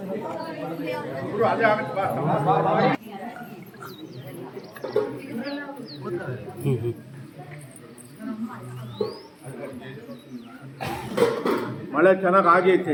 ಮಳೆ ಚೆನ್ನಾಗಿ ಆಗೈತೆ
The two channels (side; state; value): both; identical; correlation 1.00